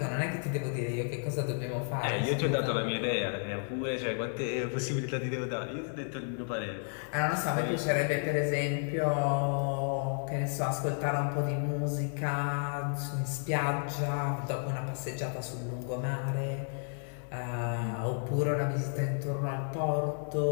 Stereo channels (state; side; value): silent; right; 56 dB below the other